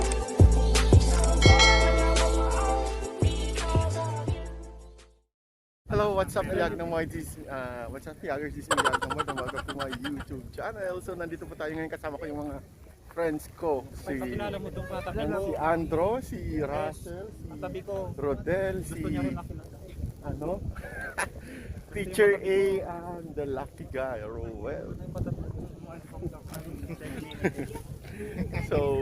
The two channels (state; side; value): identical; both; correlation 1.00